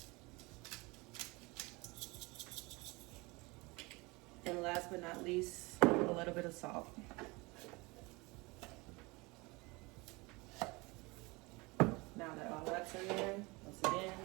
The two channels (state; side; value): quieter; left; 25.1 dB